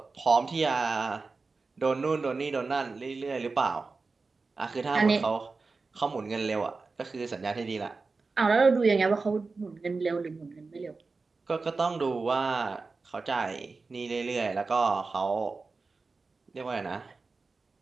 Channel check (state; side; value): quieter; left; 4.1 dB